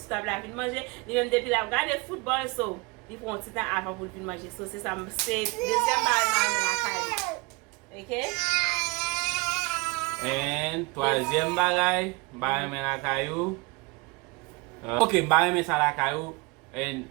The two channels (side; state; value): left; quieter; 26.0 dB